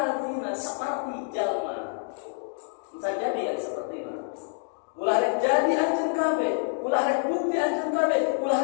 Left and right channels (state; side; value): silent; right; 60 dB below the other